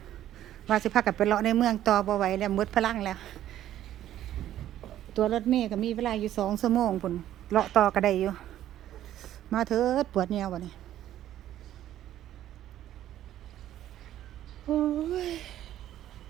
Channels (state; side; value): quieter; left; 12.3 dB